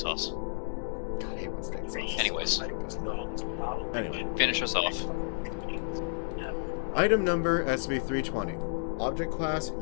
God, I hate when steak sauce. Anyways. Anyway. Finish us off. Item number SCP-320. Object class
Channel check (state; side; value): silent; right; digital silence